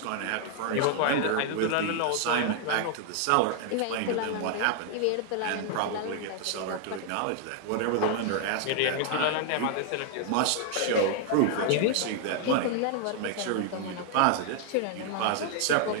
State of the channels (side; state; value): both; different; correlation 0.00